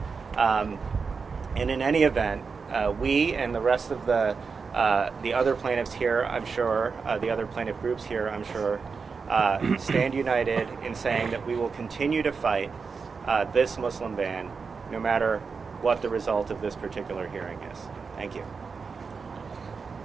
And in any event, we and the rest of the other plaintiffs here, I'm sure, the other plaintiff groups here, I'm sure, stand united in saying that we will continue to fight this Muslim ban no matter what the result of this particular hearing is. Thank you.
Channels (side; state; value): left; quieter; 5.2 dB